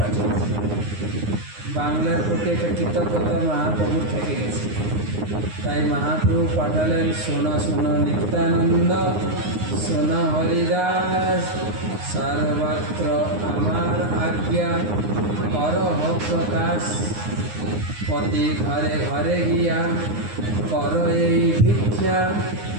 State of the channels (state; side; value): late; left; 9.7 ms